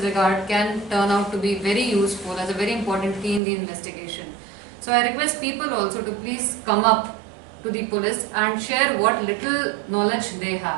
regard can turn out to be very useful as a very important key in the investigation. So I request people also to please come up to the police and share what little knowledge they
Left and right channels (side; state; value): left; drops out; at 3.4 s